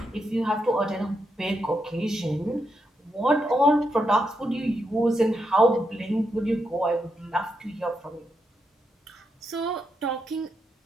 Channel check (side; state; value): both; normal; correlation 0.82